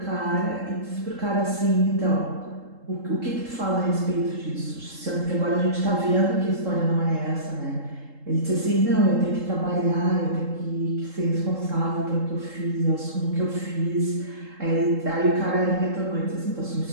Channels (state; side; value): late; left; 3.7 ms